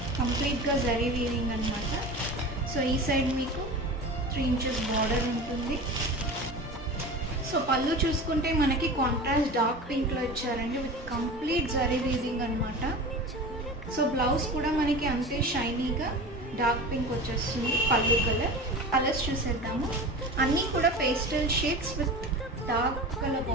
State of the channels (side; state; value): both; normal; correlation 0.32